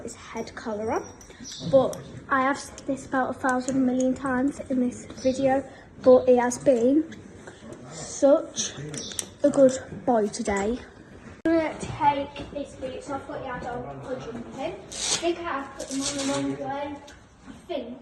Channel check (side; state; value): both; identical; correlation 1.00